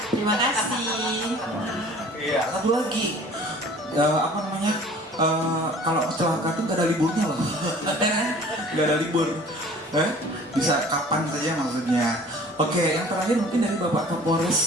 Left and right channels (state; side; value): normal; both; correlation 0.48